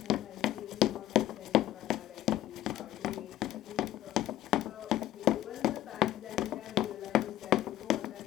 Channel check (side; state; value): right; quieter; 13.5 dB